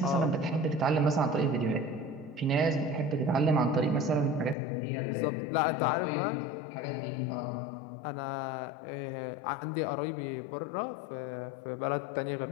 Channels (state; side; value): drops out; right; at 4.5 s